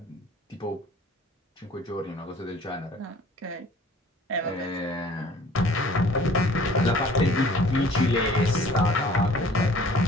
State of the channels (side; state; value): both; normal; correlation 0.52